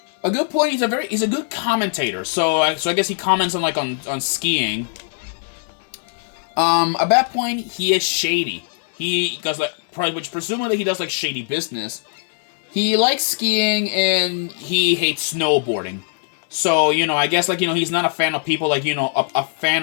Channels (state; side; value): silent; right; 65 dB below the other